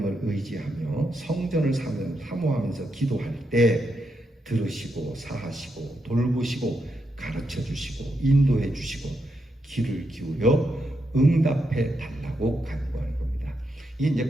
의지하며 성전을 사모하면서 기도할 때 들으시고 사하시고 돌보시고 가르쳐 주시고 인도해 주시고 귀를 기울여 응답해 달라고 간구하는 겁니다. 이게 이제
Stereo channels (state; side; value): normal; both; correlation 0.82